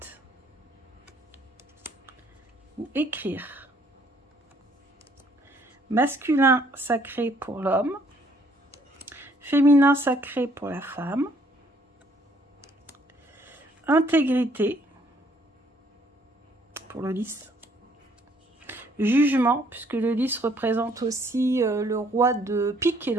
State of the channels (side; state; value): both; normal; correlation 0.64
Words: Ou écrire. Masculin sacré pour l'homme. Féminin sacré pour la femme. Intégrité pour le lys. Jugement, puisque le lys représente aussi le roi de pique, et